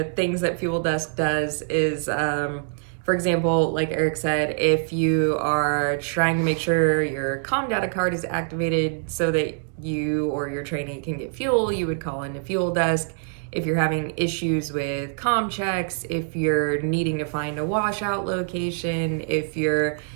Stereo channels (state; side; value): silent; left; digital silence